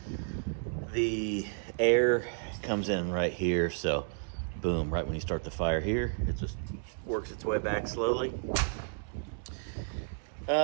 the air comes in right here. So boom, right when you start the fire here, it just works its way back slowly.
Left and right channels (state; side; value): silent; left; digital silence